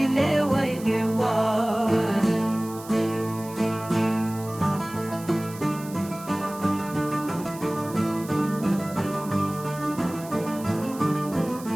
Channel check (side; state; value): right; noise; hiss, 17 dB below the sound